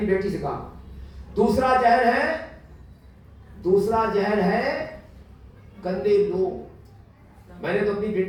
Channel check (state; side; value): identical; both; correlation 1.00